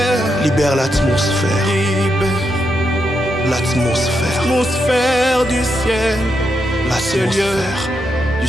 Libère l'atmosphère, l'atmosphère, L'atmosphère du ciel, l'atmosphère du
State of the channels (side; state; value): both; normal; correlation 0.82